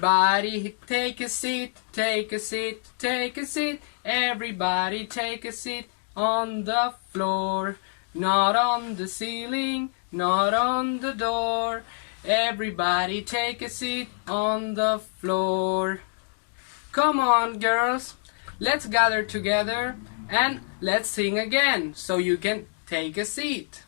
take a seat, take a seat, take a seat. Everybody take a seat on the floor. Not on the ceiling, not on the door. Everybody take a seat on the floor. Come on, girls. Let's gather together and let's sing again so you can take a seat.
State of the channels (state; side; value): silent; right; digital silence